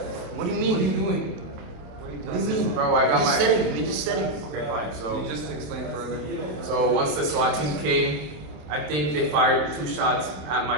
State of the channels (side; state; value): left; late; 27 ms